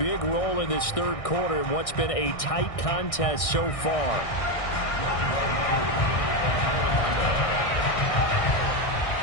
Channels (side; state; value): right; late; 1.6 ms